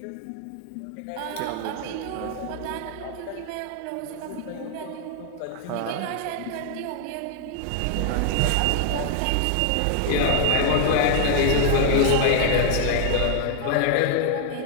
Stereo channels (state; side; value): different; both; correlation 0.00